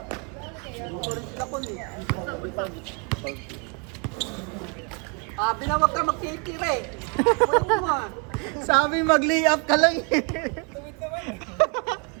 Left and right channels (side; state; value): left; quieter; 34.2 dB